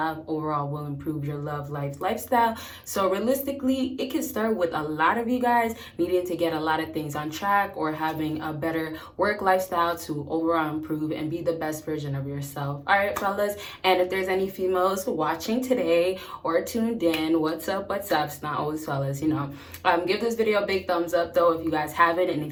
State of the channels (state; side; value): identical; both; correlation 1.00